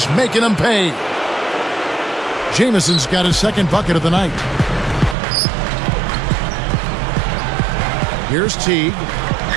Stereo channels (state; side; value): drops out; left; at 5.2 s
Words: making him pay. Jamison's got his second bucket of the night. Here's Teague.